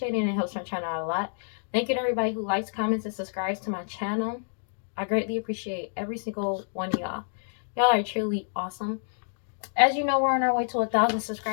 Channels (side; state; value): right; silent; digital silence